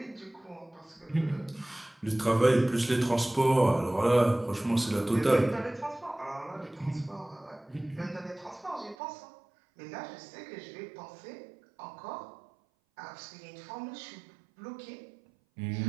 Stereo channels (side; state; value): left; drops out; at 9.0 s